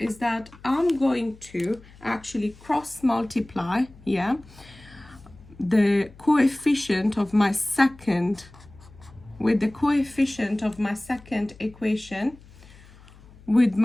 that I'm going to actually cross multiply, the coefficient of my second with the coefficient of my second equation with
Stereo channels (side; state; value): left; noise; hum, 23 dB below the sound